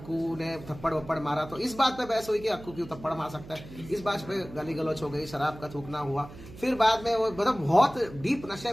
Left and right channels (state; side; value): noise; right; hum, 16 dB below the sound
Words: ने थप्पड़ वप्पड़ मारा, तो इस बात पे बहस हुई कि अक्कू क्यों थप्पड़ मार सकता है, इस बात पे गाली गलौज हो गई, शराब का थूकना हुआ। फिर बाद में वो मतलब बहुत डीप नशे